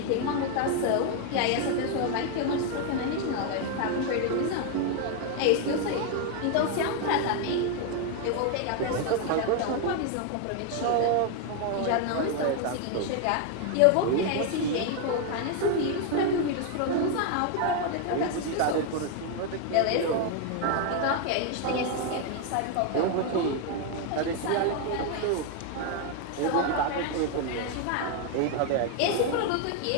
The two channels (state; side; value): different; both; correlation 0.01